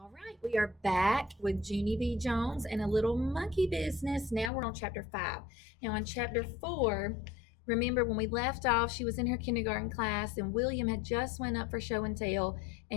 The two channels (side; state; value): right; drops out; at 4.5 s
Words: All right, we are back with Junie B. Jones and a little monkey business. Now we're on chapter 5. Now, in chapter 4, remember when we left off, she was in her kindergarten class and William had just went up for show and tell,